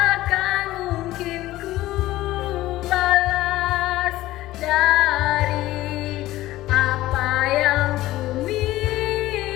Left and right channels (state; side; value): quieter; right; 16.2 dB